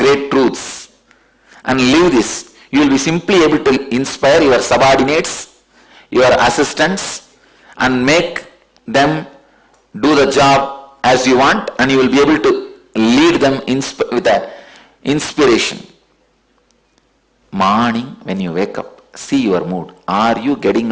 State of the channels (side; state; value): both; identical; correlation 1.00